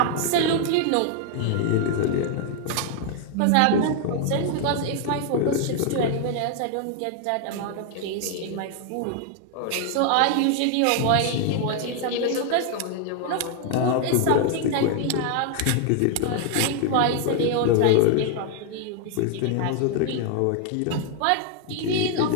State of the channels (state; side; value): different; both; correlation 0.00